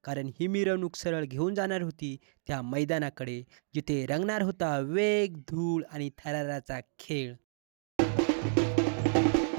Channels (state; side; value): silent; left; digital silence